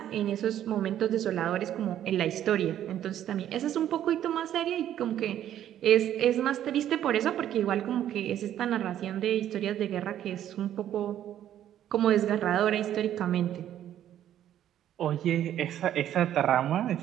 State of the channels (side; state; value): left; quieter; 11.2 dB